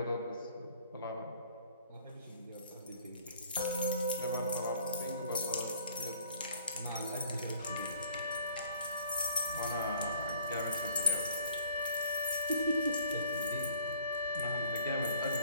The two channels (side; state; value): both; inverted; correlation -0.55